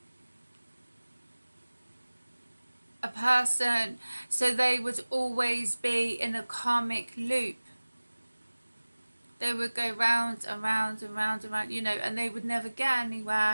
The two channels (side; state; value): both; inverted; correlation -1.00